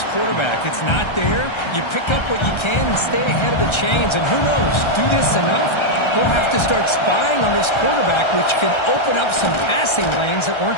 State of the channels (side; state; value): right; late; 1.3 ms